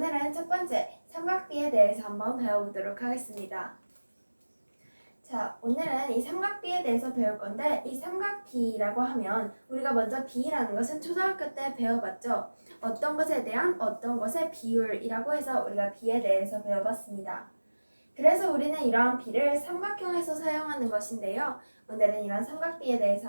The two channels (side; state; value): both; inverted; correlation -1.00